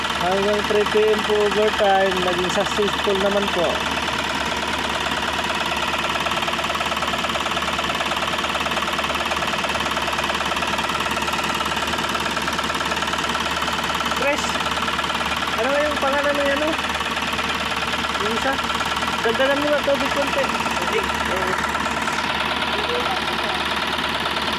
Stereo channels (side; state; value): both; identical; correlation 1.00